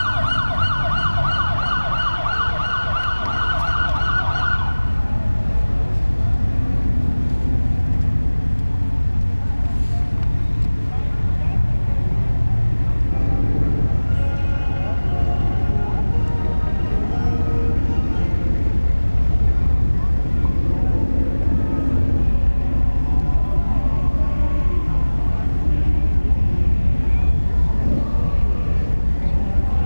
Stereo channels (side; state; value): both; inverted; correlation -1.00